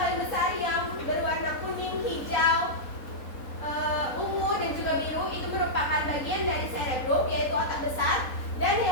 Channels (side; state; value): right; late; 3.9 ms